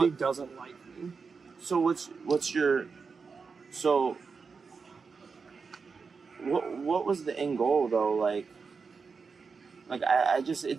doesn't like me. So what's your what was the end goal though? Like I just, it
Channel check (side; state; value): left; quieter; 5.1 dB